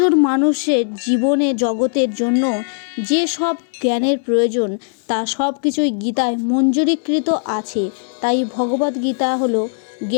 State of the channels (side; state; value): right; silent; digital silence